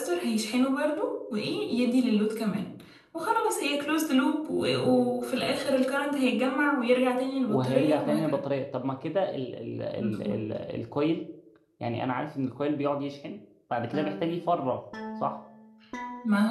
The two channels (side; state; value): both; identical; correlation 1.00